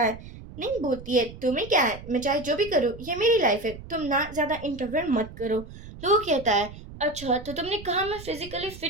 है। नहीं बोलती है, तुम्हें क्या है, मैं चाहे जो भी करूँ, ये मेरी लाइफ है, तुम ना ज्यादा इंटरफेयर मत करो। लोग कहता है, अच्छा तो तुमने कहा मैं फिजिकली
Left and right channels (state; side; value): noise; right; rumble, 15 dB below the sound